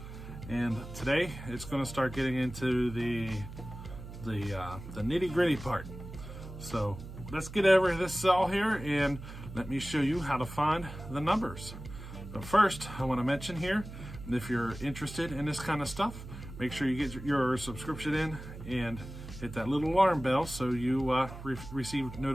and today it's going to start getting into the nitty-gritty part. So let's get over this saw here and let me show you how to find the numbers. But first, I want to mention here, if you're interested in this kind of stuff, make sure you get your subscription in and hit that little alarm bell so you receive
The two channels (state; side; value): noise; right; hum, 12 dB below the sound